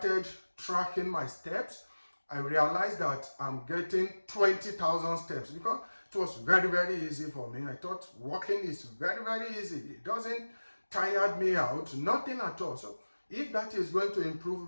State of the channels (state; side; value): inverted; both; correlation -1.00